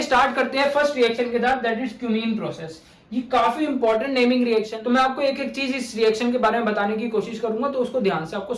स्टार्ट करते हैं फर्स्ट रिएक्शन के साथ, दैट इज क्यूमीन प्रोसेस। ये काफी इंपॉर्टेंट नेमिंग रिएक्शन, तो मैं आपको एक एक चीज इस रिएक्शन के बारे में बताने की कोशिश करूंगा, तो उसको ध्यान से आपको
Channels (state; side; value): identical; both; correlation 1.00